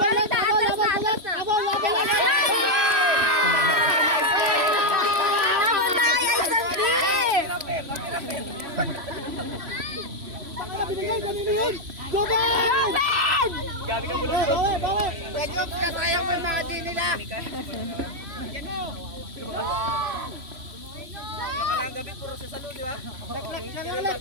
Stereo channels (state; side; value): late; left; 3.0 ms